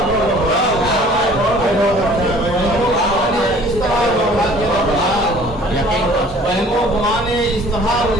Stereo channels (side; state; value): both; normal; correlation 0.51